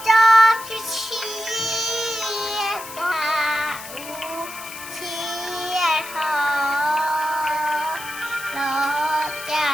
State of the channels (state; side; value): noise; left; hiss, 13 dB below the sound